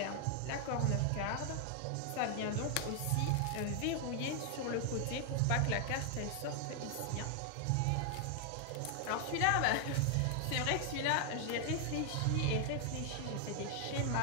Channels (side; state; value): both; different; correlation 0.00